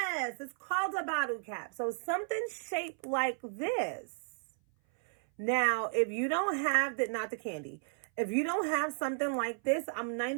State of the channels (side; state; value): left; silent; 55 dB below the other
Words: it's called a bottle cap. So something shaped like this. Now, if you don't have that, not the candy. If you don't have something like this, I'm